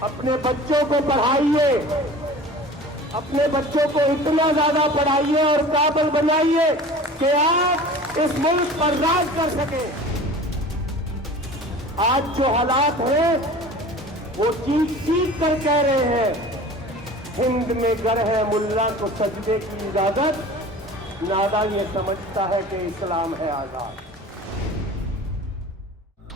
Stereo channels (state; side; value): normal; both; correlation 0.40